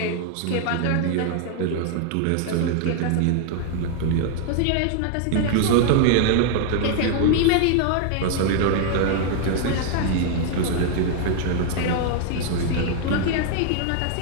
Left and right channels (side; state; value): both; different; correlation 0.00